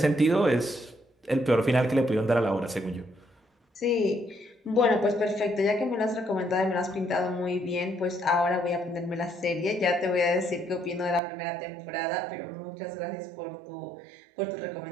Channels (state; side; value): drops out; left; at 11.2 s